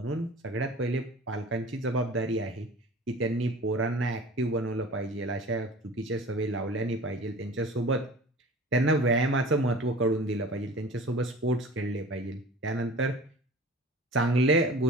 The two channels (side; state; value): both; normal; correlation 0.41